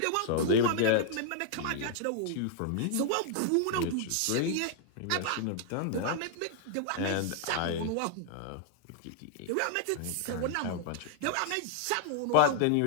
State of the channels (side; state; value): both; different; correlation 0.00